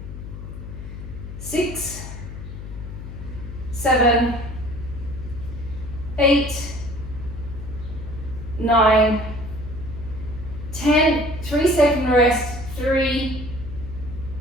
6, 7, 8, 9, 10, 3-second rest, 3,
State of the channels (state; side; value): noise; left; hum, 10 dB below the sound